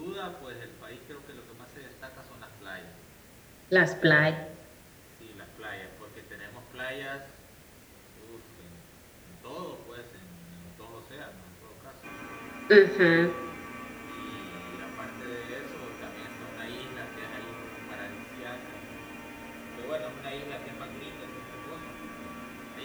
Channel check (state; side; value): identical; both; correlation 1.00